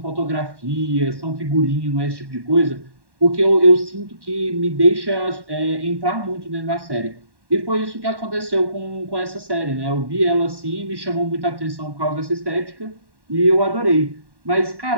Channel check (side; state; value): left; late; 1.1 ms